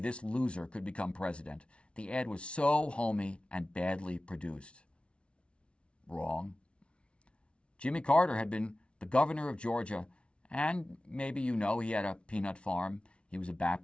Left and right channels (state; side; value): late; right; 0.059 ms